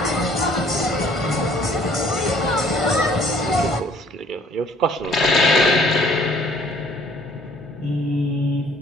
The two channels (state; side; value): normal; both; correlation 0.58